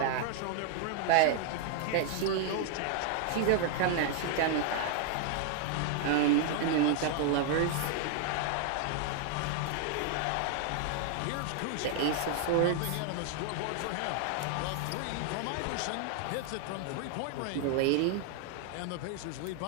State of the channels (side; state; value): both; different; correlation 0.00